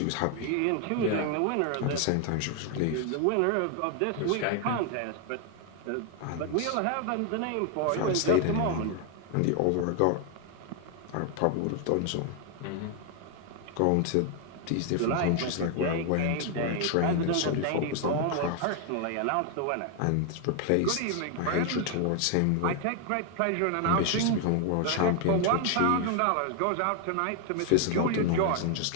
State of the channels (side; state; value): both; different; correlation 0.00